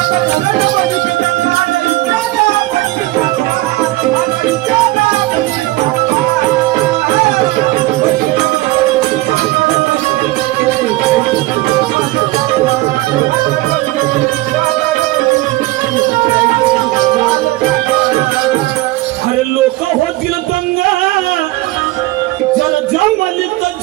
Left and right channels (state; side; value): quieter; left; 19.0 dB